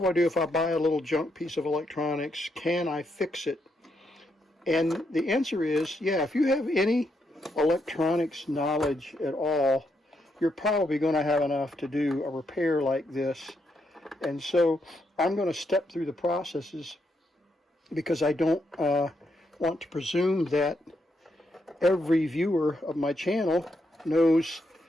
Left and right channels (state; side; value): normal; both; correlation 0.79